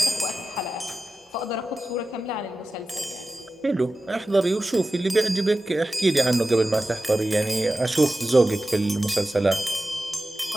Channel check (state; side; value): normal; both; correlation 0.94